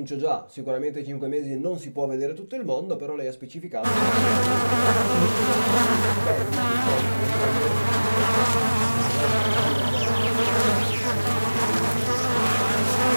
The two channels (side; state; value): both; inverted; correlation -1.00